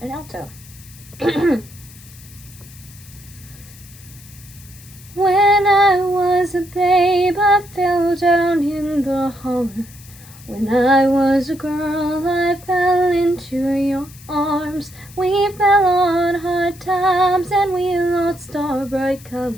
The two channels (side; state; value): left; noise; hiss, 21 dB below the sound